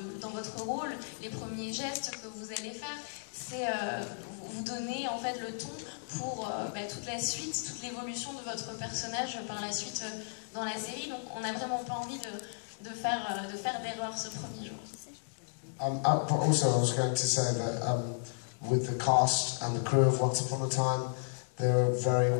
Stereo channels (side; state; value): right; silent; digital silence